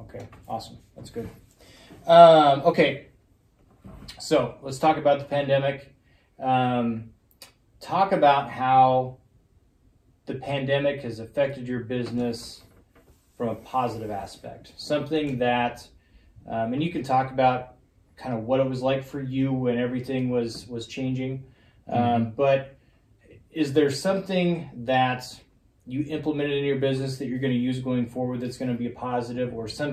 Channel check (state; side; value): identical; both; correlation 1.00